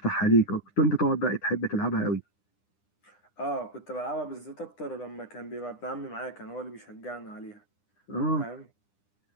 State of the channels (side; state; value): right; late; 9.9 ms